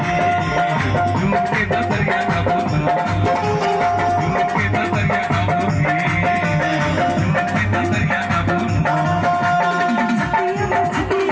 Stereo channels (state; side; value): identical; both; correlation 1.00